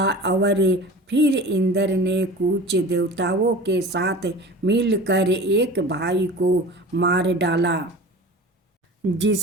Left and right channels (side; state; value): both; normal; correlation 0.38